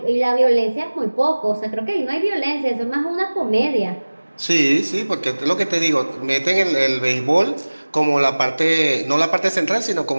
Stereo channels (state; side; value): inverted; both; correlation -1.00